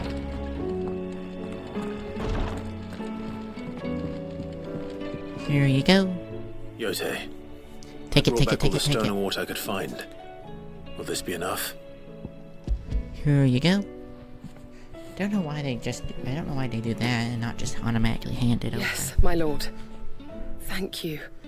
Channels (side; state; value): both; identical; correlation 1.00